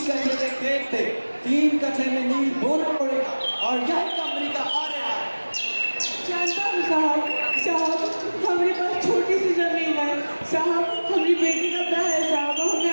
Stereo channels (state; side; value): inverted; both; correlation -1.00